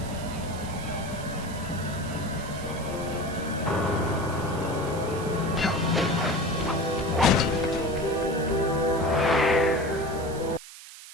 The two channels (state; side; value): noise; right; hiss, 16 dB below the sound